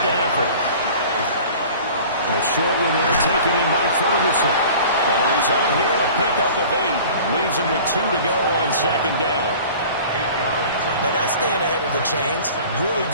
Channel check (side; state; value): both; inverted; correlation -0.43